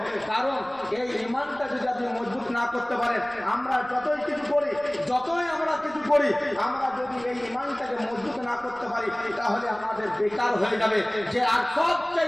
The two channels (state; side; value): noise; right; rumble, 25 dB below the sound